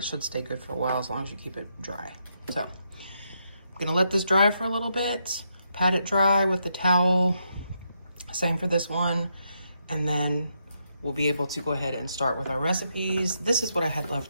should stay good for a while as long as you keep it dry. So I'm gonna let this dry for a little bit, pat it dry with the towel. Same for this one. And then we'll be able to go ahead and start with our recipes. This is what I had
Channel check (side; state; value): both; inverted; correlation -0.80